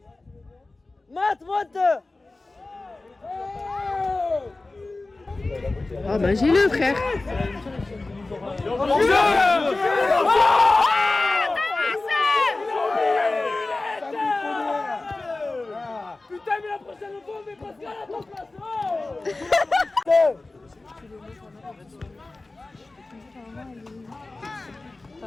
Matt, monte. Ah, ben, j'ai le frère. Putain, mais la prochaine fois, on met Pascal à ton place.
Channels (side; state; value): right; quieter; 3.2 dB